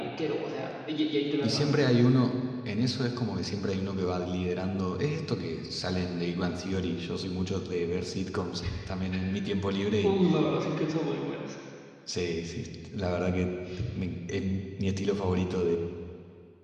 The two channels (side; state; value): both; identical; correlation 1.00